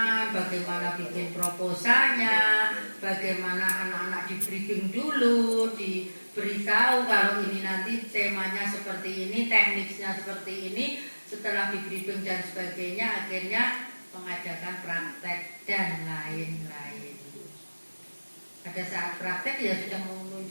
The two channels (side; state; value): both; inverted; correlation -1.00